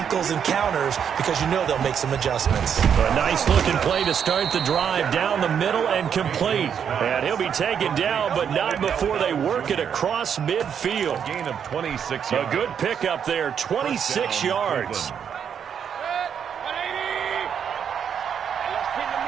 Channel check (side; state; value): left; quieter; 7.9 dB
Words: and counters because you know they'll make some adjustments. A nice-looking play to start the drive down the middle and complete. And he'll be taken down, but not before they work it across midfield. Gain of 26 A yards. good pickup there, 26 yards.